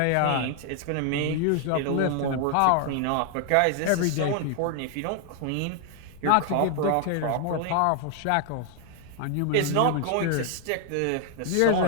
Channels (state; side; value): different; both; correlation 0.00